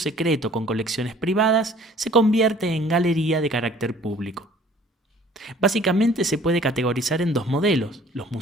con colecciones privadas, se convierte en galería de carácter público. Básicamente se puede categorizar en dos modelos: los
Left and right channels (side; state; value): both; normal; correlation 0.53